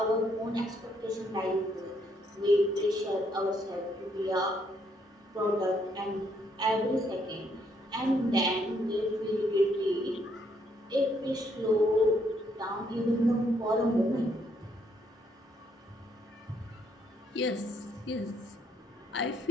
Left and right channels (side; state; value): both; normal; correlation 0.72